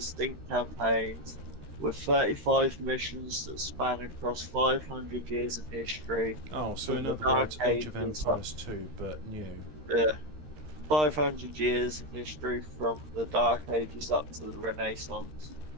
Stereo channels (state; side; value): late; left; 13 ms